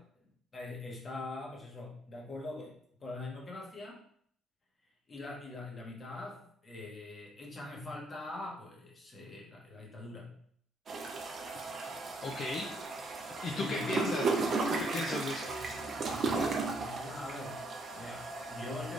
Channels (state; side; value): normal; both; correlation 0.71